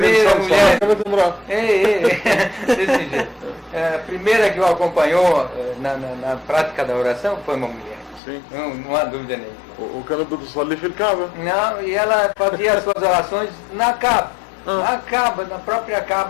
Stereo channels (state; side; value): drops out; right; at 8.2 s